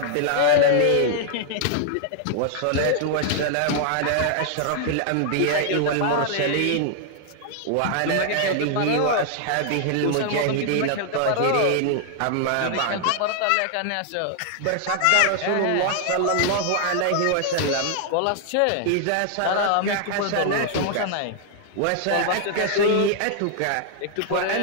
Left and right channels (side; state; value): both; different; correlation 0.00